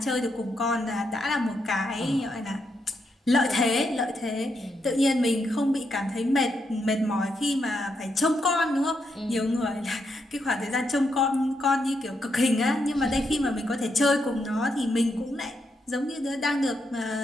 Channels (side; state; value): both; normal; correlation 0.81